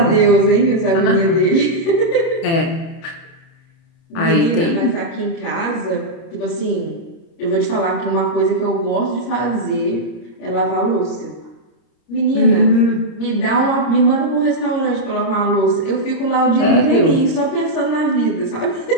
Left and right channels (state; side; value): late; right; 30 ms